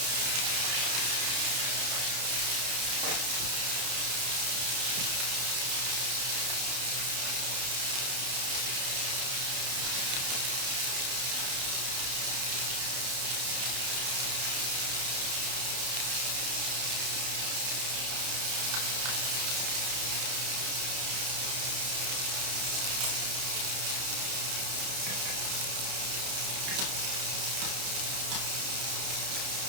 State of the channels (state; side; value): late; left; 31 ms